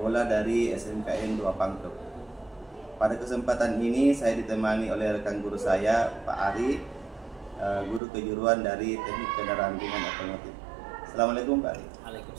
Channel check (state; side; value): drops out; left; at 8.0 s